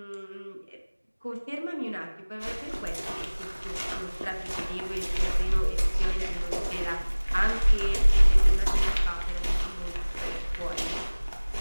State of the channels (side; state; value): both; inverted; correlation -1.00